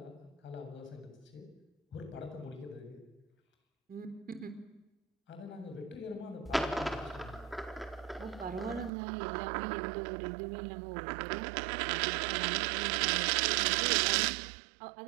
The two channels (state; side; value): drops out; left; at 8.9 s